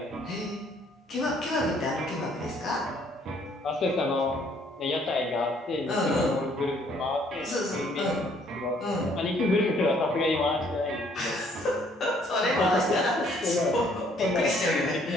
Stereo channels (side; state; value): both; normal; correlation 0.63